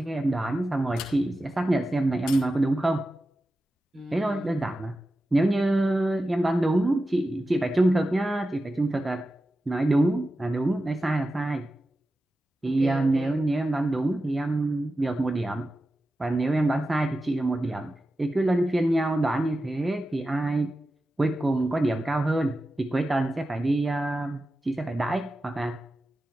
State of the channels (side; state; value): both; normal; correlation 0.93